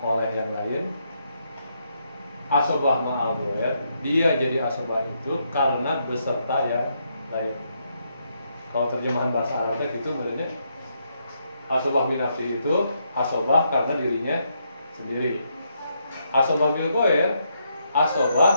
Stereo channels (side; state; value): both; inverted; correlation -0.78